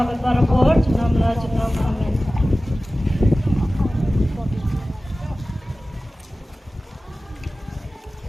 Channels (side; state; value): both; normal; correlation 0.96